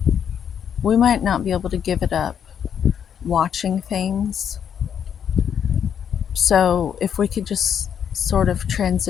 We might not be able to give it up watching things. So if we could just sort of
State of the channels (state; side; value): quieter; right; 8.4 dB